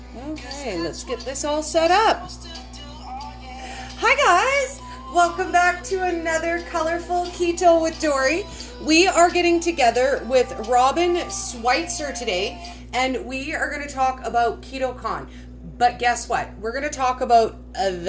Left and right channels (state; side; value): identical; both; correlation 1.00